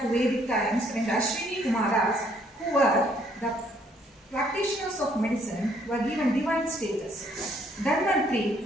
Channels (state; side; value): normal; both; correlation 0.66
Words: to Vedic times when the Ashwini Kumaras, who were the practitioners of medicine, were given divine status.